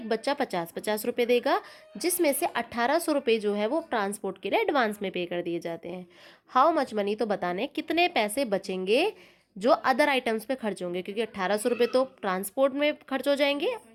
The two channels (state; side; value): identical; both; correlation 1.00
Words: बच्चा 50-50 रुपये देगा, जिसमें से 1800 रुपये जो है वो ट्रांसपोर्ट के लिए एडवांस में पे कर दिए जाते हैं। हाउ मच मनी, तो बताने कितने पैसे बचेंगे जो अदर आइटम्स पे खर्च होंगे, क्योंकि 1800 रुपये तो ट्रांसपोर्ट में खर्च हो जाएंगे,